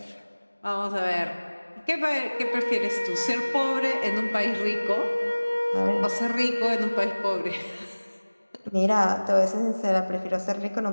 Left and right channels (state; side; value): inverted; both; correlation -1.00